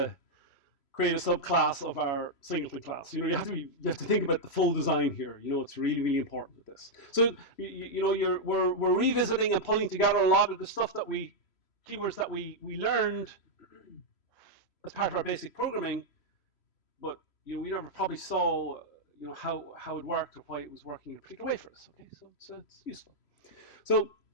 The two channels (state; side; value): late; right; 3.0 ms